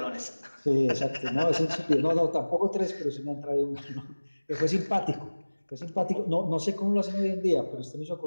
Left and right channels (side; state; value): both; inverted; correlation -1.00